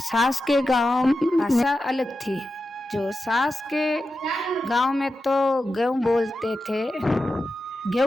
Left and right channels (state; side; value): normal; both; correlation 0.91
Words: के गांव भाषा अलग थी। जो सास के गांव में तो गेहूँ बोलते थे,